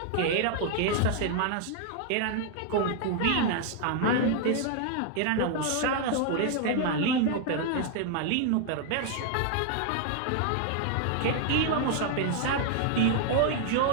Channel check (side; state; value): both; different; correlation 0.00